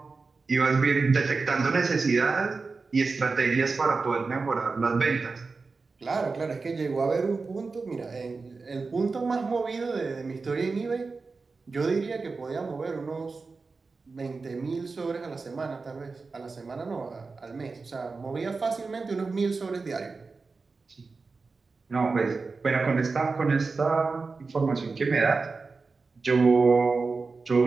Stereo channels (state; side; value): quieter; left; 4.2 dB